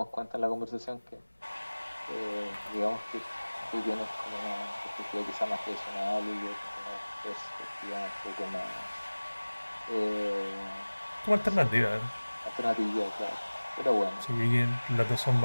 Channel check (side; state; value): both; inverted; correlation -1.00